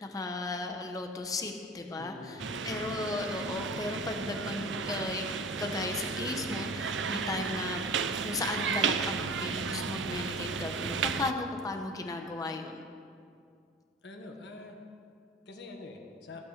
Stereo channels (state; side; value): normal; both; correlation 0.37